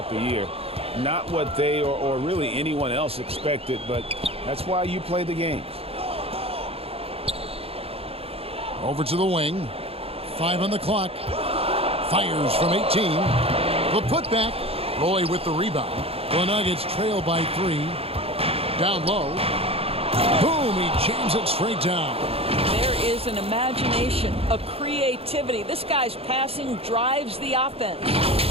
the year. Not what they or really anyone else expected, but that's why you play the games. Over to the wing. 5 on the clock. Fires from 18. The putback. Roy with the rebound. The Nuggets trail by 3. Down low. Boom, he jams it straight down. There is an imagination, a creativity. This guy's passing drives the offense.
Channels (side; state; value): left; late; 0.28 ms